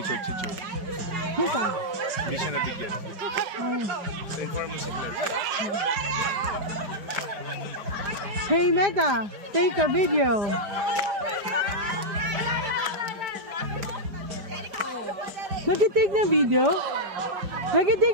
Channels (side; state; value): left; late; 4.9 ms